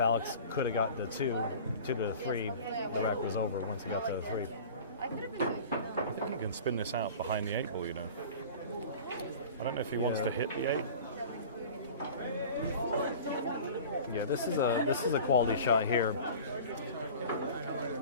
Alex could have got the 2 to the 3, the rack was over once he got to the 3. I think he can spin this out behind the 8 ball, you know. I don't know if he wants to hit the 8. Yeah, this is a quality shot here.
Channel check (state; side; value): inverted; both; correlation -0.40